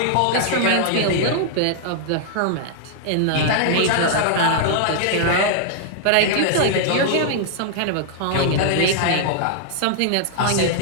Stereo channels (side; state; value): both; different; correlation -0.01